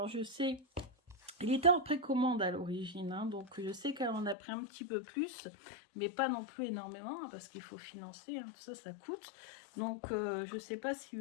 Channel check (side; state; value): right; drops out; at 4.4 s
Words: je sais, Il était en précommande à l'origine, hein, donc je sais qu'elle en a pris un petit peu plus, mais pas non plus énormément, hein, parce qu'il faut financer, hein, tout ça, ça coûte. Donc je ne sais pas s'il